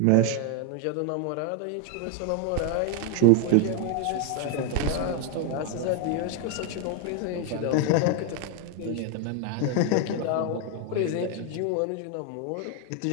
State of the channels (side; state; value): both; different; correlation 0.01